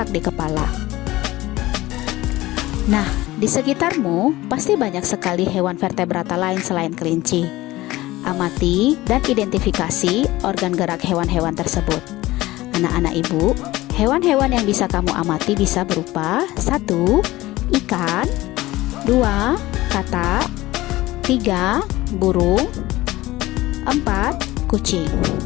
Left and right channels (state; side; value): quieter; right; 17.9 dB